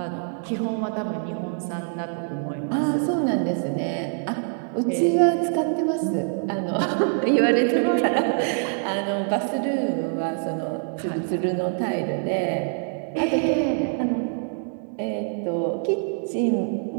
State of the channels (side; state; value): left; silent; 62 dB below the other